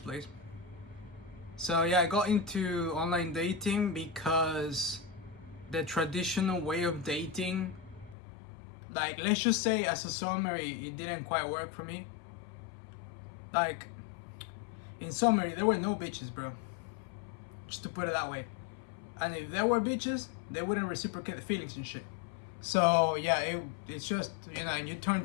place, so yeah, I got into online dating because the traditional way of dating, like, let's just say as a summary, it didn't quite work for me. Like, in summary, there were no bitches, bro. Just to put it that way. And if there were bitches, they wouldn't reciprocate the feelings and shit. So yeah, it's just, you know, and you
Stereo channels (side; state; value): right; drops out; at 8.2 s